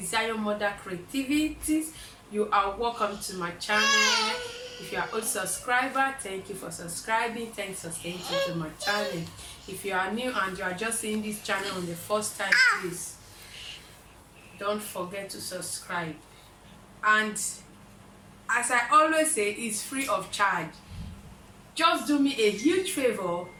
Mother Creativities. You are welcome to my channel. If you are a subscriber, thank you for subscribing. Thanks for staying tuned to my channel. If you are new and you are just seeing this channel on the first time, please don't forget to subscribe. And as I always say, it's free of charge. Just do me a huge favor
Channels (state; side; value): identical; both; correlation 1.00